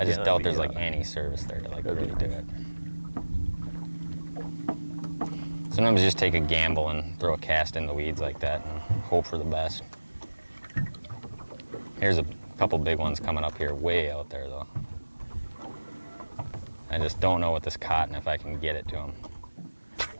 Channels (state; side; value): inverted; both; correlation -1.00